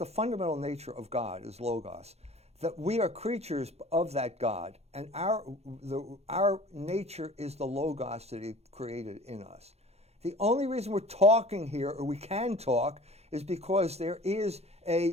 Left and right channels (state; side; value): late; left; 0.31 ms